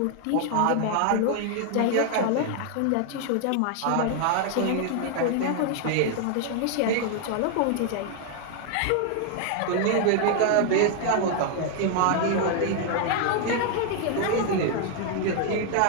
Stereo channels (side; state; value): both; different; correlation 0.00